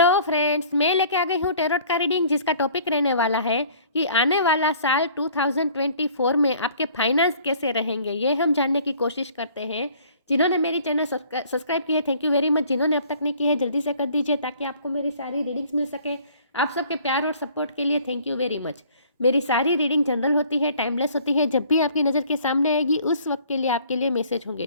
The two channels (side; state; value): both; inverted; correlation -0.54